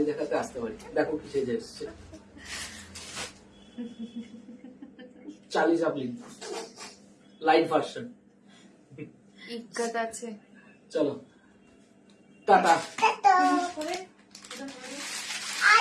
দেখাতে আসতে পারি। দেখো কি সেজে এসছে, চার্লি চ্যাপলিন লাইট ভার্সন। ইজ্জত আছে। চলো টাটা।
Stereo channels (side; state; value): both; identical; correlation 1.00